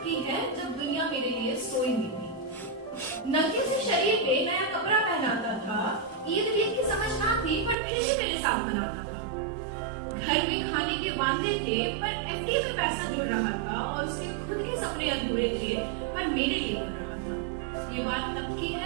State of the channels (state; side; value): drops out; left; at 7.8 s